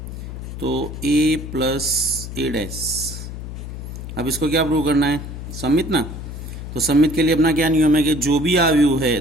तो a + a डैश। अब इसको क्या प्रूव करना है? सम्मित ना। तो सम्मित के लिए अपना क्या नियम है कि जो भी अवयव है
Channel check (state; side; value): noise; left; hum, 9 dB below the sound